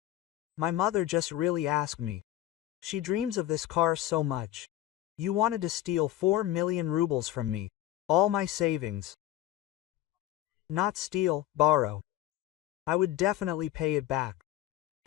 My mother just really asked me. She dreams of this car so much. You wanted to steal 4 million rubles from me. All my savings. Not steal, borrow. I would definitely pay it back.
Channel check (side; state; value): right; quieter; 13.9 dB